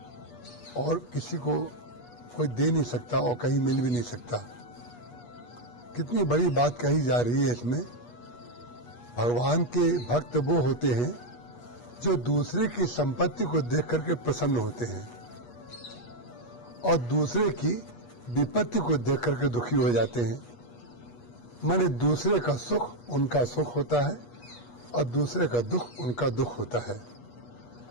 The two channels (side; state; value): right; late; 8.3 ms